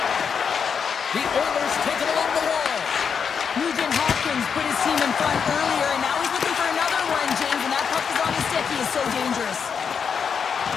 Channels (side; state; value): right; quieter; 6.6 dB